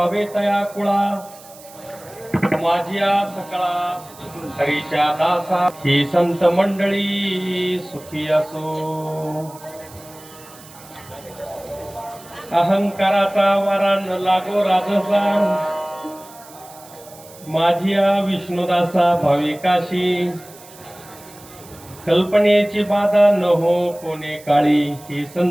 तया कुळा माझिया सकळा हरीच्या दासा ही संत मंडळी सुखी असो। अहंकाराचा वारा न लागो राजसा माझिया विष्णुदासा भाविकाशी कल्पनेची बाधा न हो कोणे काळी ही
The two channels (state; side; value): noise; right; hiss, 21 dB below the sound